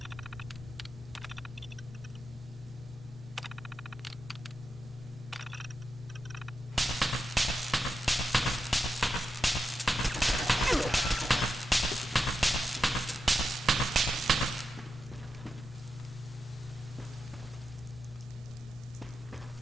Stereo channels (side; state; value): both; normal; correlation 0.88